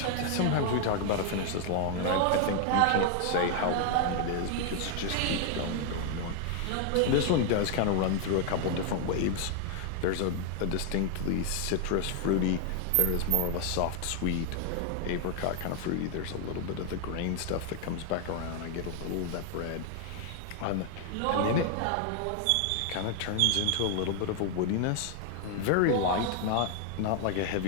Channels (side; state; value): both; different; correlation 0.00